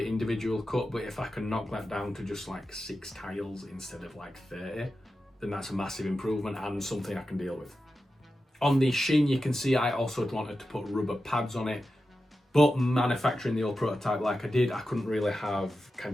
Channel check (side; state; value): both; normal; correlation 0.91